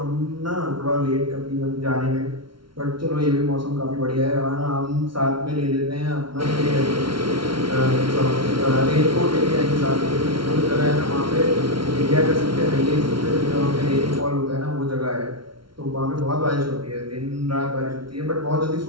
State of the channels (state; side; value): late; left; 0.74 ms